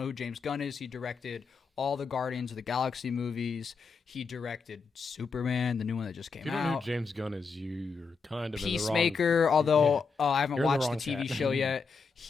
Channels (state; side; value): quieter; right; 5.0 dB